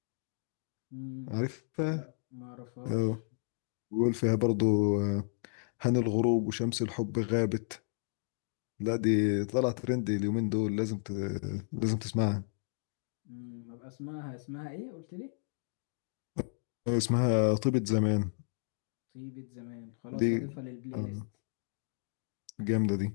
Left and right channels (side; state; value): right; silent; digital silence